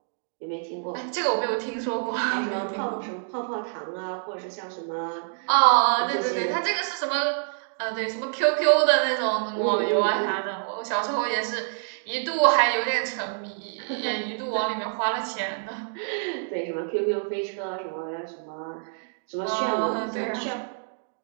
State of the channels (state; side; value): silent; left; digital silence